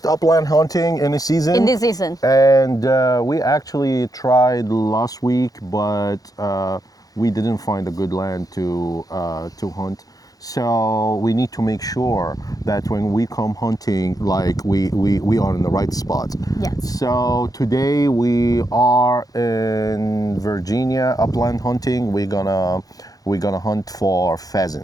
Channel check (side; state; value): right; late; 0.18 ms